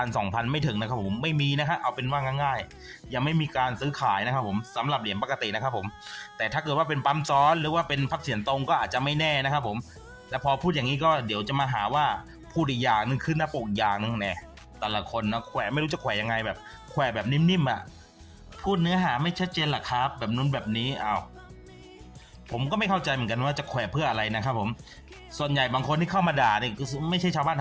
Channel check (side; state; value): both; identical; correlation 1.00